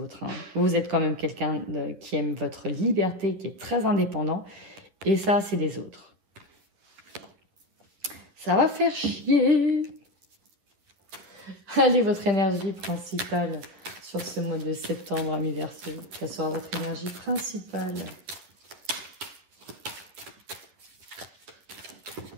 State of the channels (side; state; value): left; late; 11 ms